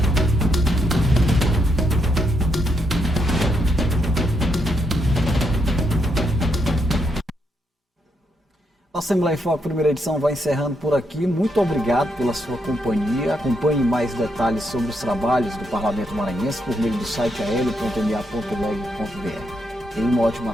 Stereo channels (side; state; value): both; normal; correlation 0.79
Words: A Assembleia em Foco, primeira edição, vai encerrando por aqui. Muito obrigado pela sua companhia. Acompanhe mais detalhes sobre os trabalhos do Parlamento Maranhense por meio do site ael.ma.leg.br. Tenha uma ótima